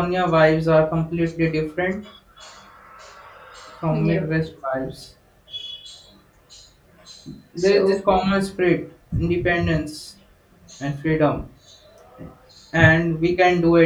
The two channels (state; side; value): identical; both; correlation 1.00